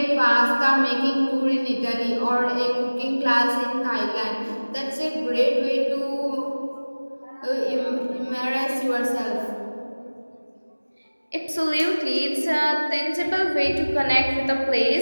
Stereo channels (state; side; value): inverted; both; correlation -1.00